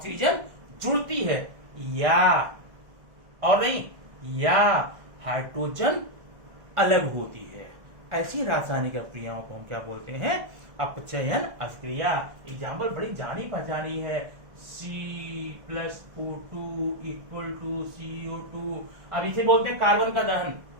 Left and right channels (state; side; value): late; left; 1.6 ms